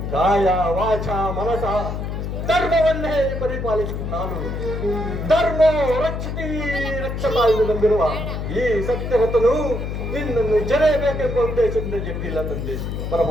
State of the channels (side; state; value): left; noise; hum, 4 dB below the sound